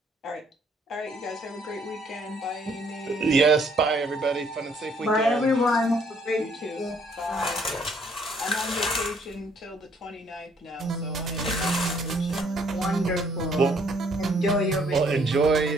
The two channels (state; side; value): normal; both; correlation 0.65